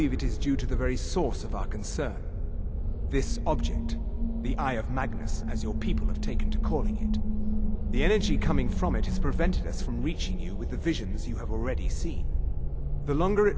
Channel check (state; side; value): identical; both; correlation 1.00